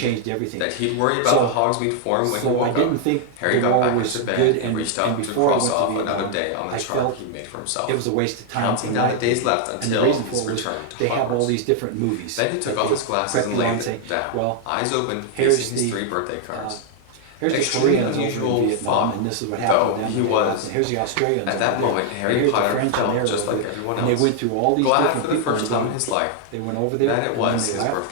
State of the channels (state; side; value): different; both; correlation 0.00